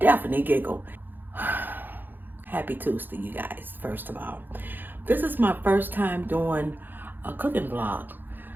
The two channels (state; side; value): late; left; 0.091 ms